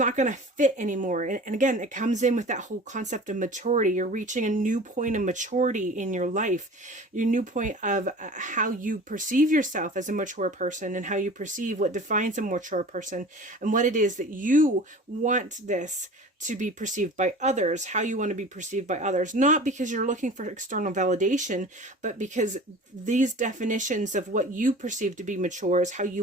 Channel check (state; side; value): normal; both; correlation 0.40